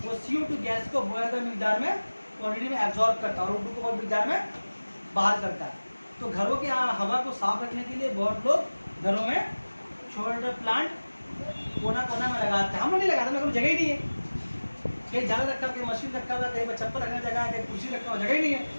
वो CO2 गैस को बहुत ज़्यादा मिकदार में, क्वांटिटी में एब्जॉर्ब करता है और O2 को बहुत मिकदार में बाहर करता है। तो घरों की हवा को साफ रखने के लिए बहुत लोग घरों में छोटे प्लांट कोना कोना में लगाते हैं। हम लोग नहीं लगाते, मेरे को जगह ही नहीं है। कहीं झाड़ रखा, कहीं मशीन रखा हुआ, कहीं चप्पल रखने जगह है, कहीं कुर्सी रखा हुआ, जगह ही नहीं है।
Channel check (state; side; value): inverted; both; correlation -1.00